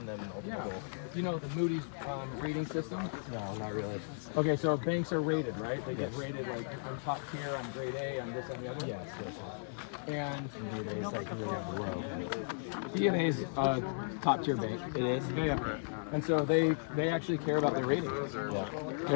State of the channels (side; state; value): right; silent; digital silence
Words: them yeah, ultimately. you know the Moody's rating system? No, not really. Okay, so banks are rated, right? They get rated like I'm top tier, I'm grade A, I'm this and the other. Yes, yes, And it's like really below. DNA's top tier bank. It is? Yeah. And so they actually care about their rating. Yeah.